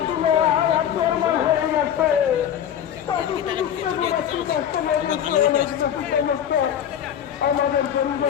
ছিল, আন্দোলন হয়ে গেছে, আমাদের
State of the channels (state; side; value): quieter; right; 9.7 dB